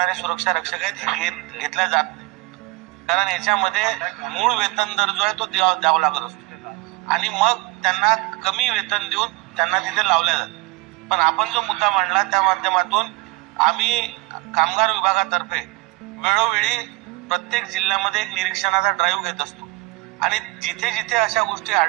सुरक्षा रक्षक आहेत हे घेतल्या जात नाही. कारण याच्यामध्ये मूळ वेतन दर जो आहे तो द्यावा लागत असतो आणि मग त्यांना कमी वेतन देऊन त्यांना तिथे लावल्या जातं. पण आपण जो मुद्दा मांडला त्या माध्यमातून आम्ही कामगार विभागातर्फे वेळोवेळी प्रत्येक जिल्ह्यामध्ये एक निरीक्षणाचा ड्राईव्ह घेत असतो आणि जिथे जिथे अशा गोष्टी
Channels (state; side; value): quieter; left; 23.3 dB